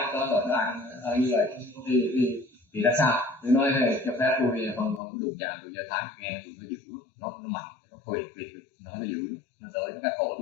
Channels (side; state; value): right; drops out; at 5.0 s